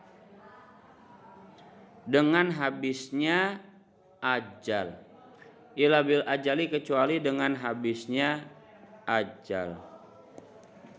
dengan habisnya ajal. Illa bil ajali, kecuali dengan habisnya ajal.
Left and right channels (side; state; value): both; identical; correlation 1.00